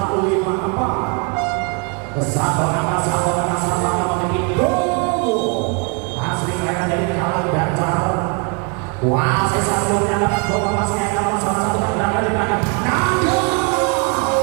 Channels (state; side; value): quieter; left; 34.6 dB